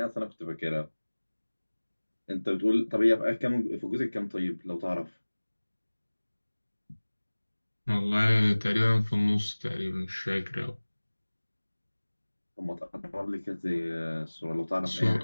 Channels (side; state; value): both; inverted; correlation -1.00